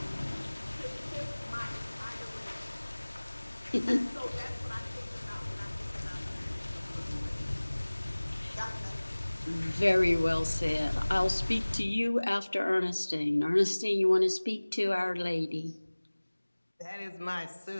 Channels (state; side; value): inverted; both; correlation -1.00